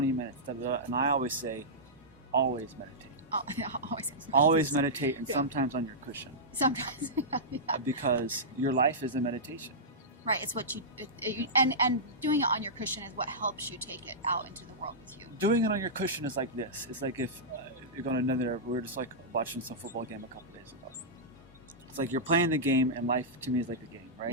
minutes, da, da, da. And I always say, always meditate. Oh, yeah, Always meditate, and sometimes on your cushion. Sometimes. Yeah. Because your life is a meditation. Right, it's what you and doing it on your cushion is what helps you take it out into the world with you. Doing it on your cushion is like this. It's like if you're going to another. We were just watching some football game a couple days ago. It's like you're playing the game, and life to me is like a game, right?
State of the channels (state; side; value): normal; both; correlation -0.13